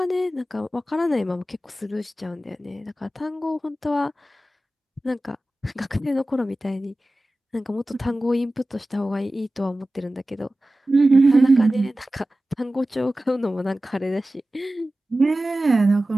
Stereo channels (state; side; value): normal; both; correlation 0.95